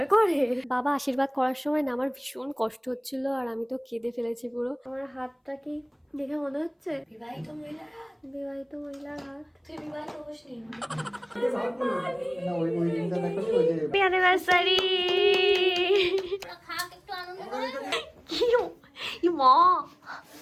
করে। বাবা আশীর্বাদ করার সময় না আমার ভীষণ কষ্ট হচ্ছিল আর আমি তো কেঁদে ফেলেছি পুরো। আমার হাতটা কি দেখে মনে হচ্ছে বিবাহিত মহিলার হাত? বিবাহিত মহিলার হাত। তুই বিবাহিত হসনি? Happy anniversary. খাক একটু আনন্দ করে। কি মা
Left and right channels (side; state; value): both; identical; correlation 1.00